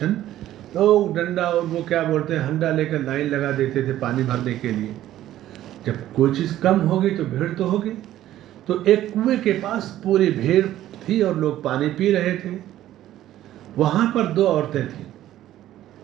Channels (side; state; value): left; quieter; 13.3 dB